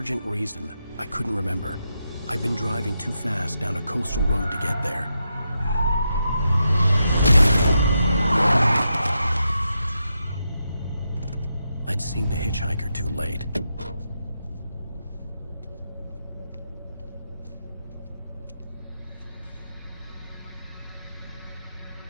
reason, I couldn't remember. I'd been driving too fast down a coastal road to get there. I'd seen the hitchhiker too late.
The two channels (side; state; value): both; inverted; correlation -0.85